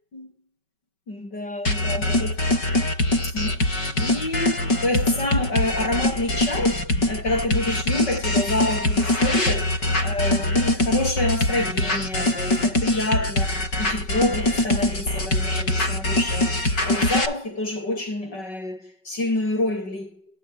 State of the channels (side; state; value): right; late; 5.3 ms